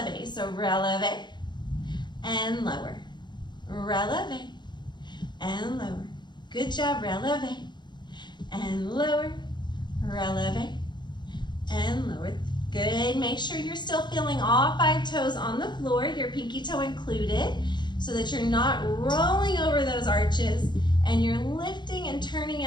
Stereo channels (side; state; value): right; late; 0.21 ms